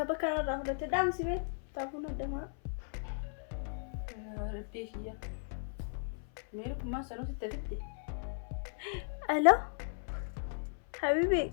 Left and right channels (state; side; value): silent; right; 54 dB below the other